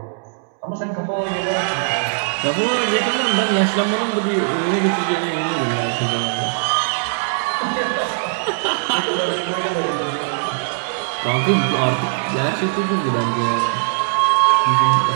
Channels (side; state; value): left; silent; 66 dB below the other